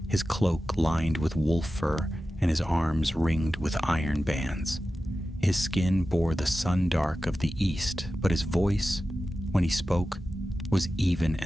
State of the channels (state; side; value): normal; both; correlation 0.94